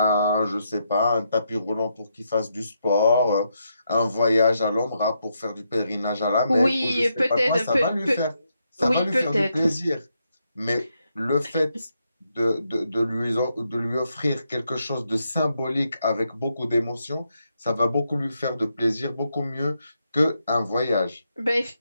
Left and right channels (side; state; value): both; inverted; correlation -0.81